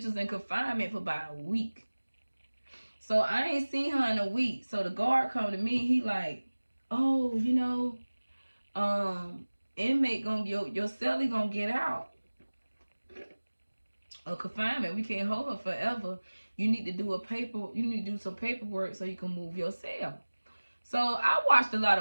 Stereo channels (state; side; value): inverted; both; correlation -1.00